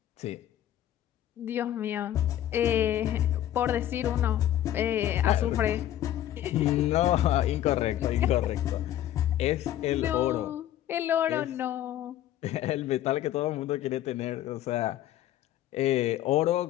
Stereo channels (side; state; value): right; quieter; 12.4 dB